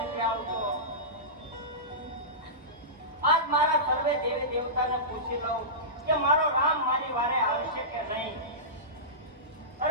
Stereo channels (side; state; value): both; normal; correlation -0.19